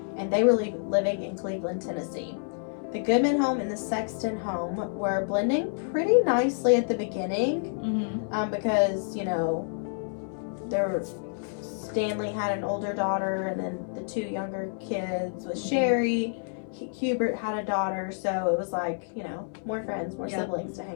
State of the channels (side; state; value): right; silent; digital silence